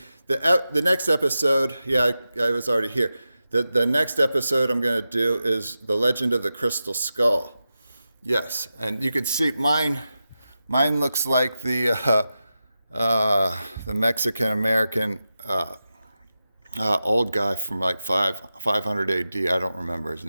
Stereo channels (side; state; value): both; inverted; correlation -0.91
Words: The next episode, I was already here. The next episode I'm going to do is The Legend of the Crystal Skull. Yes, and you can see mine looks like the Mexican American old guy from like 500 AD. I don't remember his